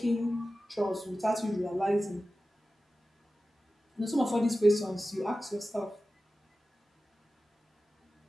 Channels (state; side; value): normal; both; correlation 0.95